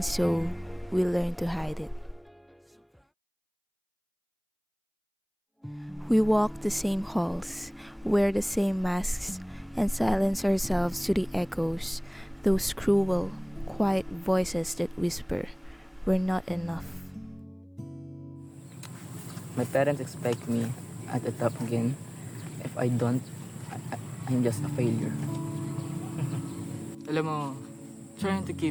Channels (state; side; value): identical; both; correlation 1.00